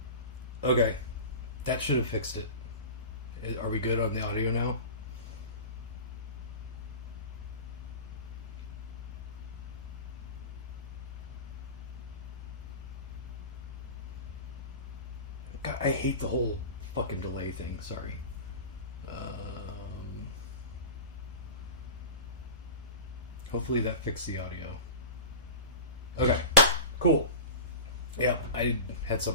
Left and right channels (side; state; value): both; inverted; correlation -0.32